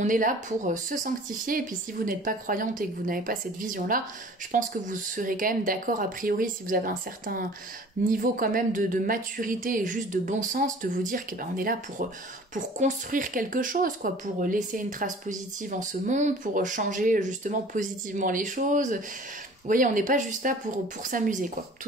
est là pour se sanctifier, et puis si vous n'êtes pas croyante et que vous n'avez pas cette vision-là, je pense que vous serez quand même d'accord a priori, si vous avez un certain niveau quand même de maturité et juste de bon sens, de vous dire que on est là pour construire quelque chose, quoi, pour laisser une trace positive en ce monde, pour changer justement positivement les choses. Vous voyez, on n'est pas juste là pour s'amuser, quoi,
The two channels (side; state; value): both; normal; correlation 0.47